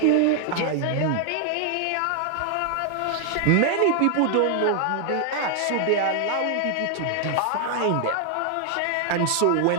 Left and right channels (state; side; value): different; both; correlation 0.00